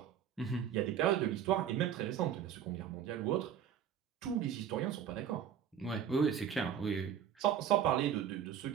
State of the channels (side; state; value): left; quieter; 8.9 dB